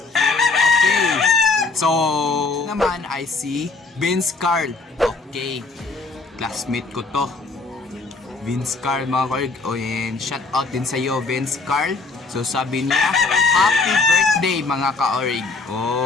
Okay. So, naman I see Vince Carl. Okay. Classmate ko to. Vince Carl mga ka-orig. And shout out din sa iyo, Vince Carl. So sabi niya, happy birthday mga ka-orig.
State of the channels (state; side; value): quieter; right; 3.9 dB